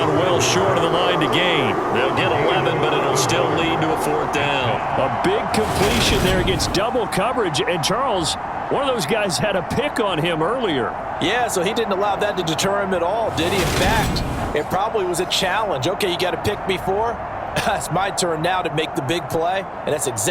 well short of the line to gain. They'll get 11, but it'll still lead to a 4th down. A big completion there against double coverage. And Charles, one of those guys had a pick on him earlier. Yeah, so he didn't allow that to deter him at all, did he? In fact, it probably was a challenge. Okay, you got to pick me 4. It's my turn now to make the big play, and that's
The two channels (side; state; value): both; identical; correlation 1.00